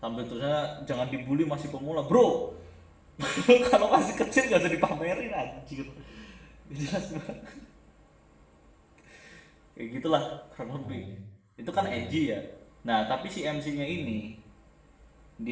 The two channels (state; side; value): identical; both; correlation 1.00